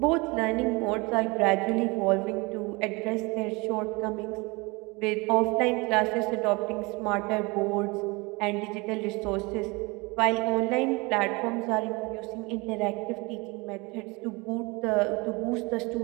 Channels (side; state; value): left; quieter; 26.2 dB